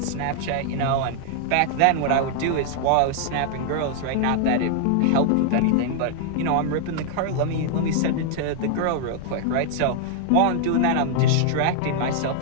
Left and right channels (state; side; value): different; both; correlation -0.01